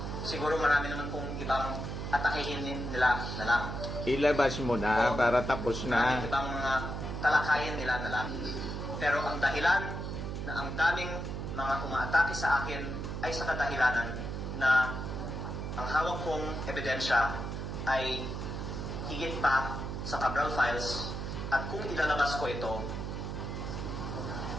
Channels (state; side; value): noise; right; hum, 5 dB below the sound